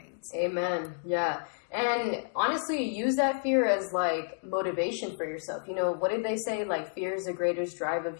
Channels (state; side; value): silent; right; digital silence